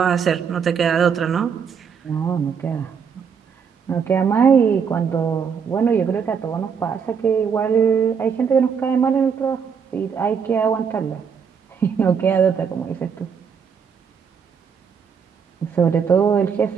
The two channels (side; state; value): left; quieter; 6.6 dB